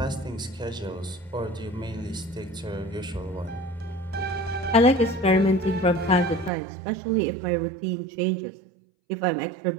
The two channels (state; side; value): drops out; left; at 6.5 s